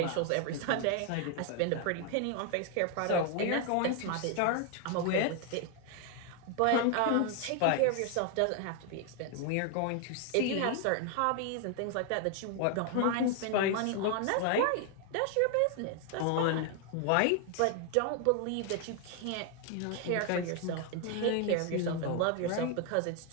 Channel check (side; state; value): both; different; correlation 0.00